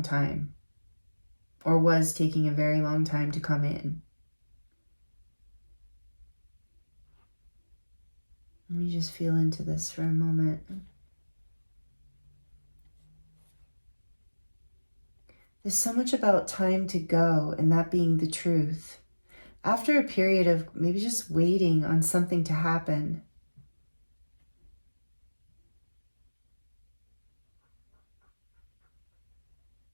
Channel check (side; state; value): both; inverted; correlation -1.00